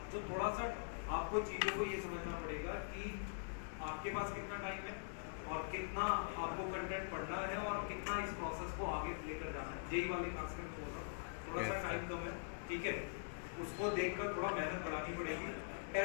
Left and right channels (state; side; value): silent; right; digital silence